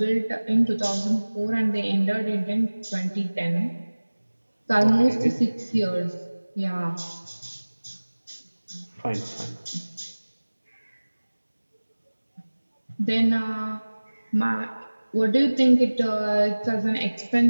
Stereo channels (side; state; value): both; inverted; correlation -1.00